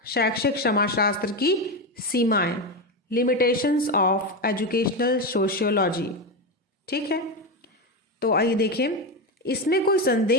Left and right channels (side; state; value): both; normal; correlation 0.14